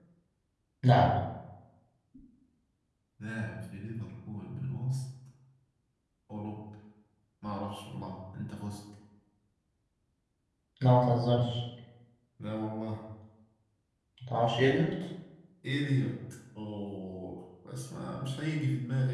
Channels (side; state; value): both; identical; correlation 1.00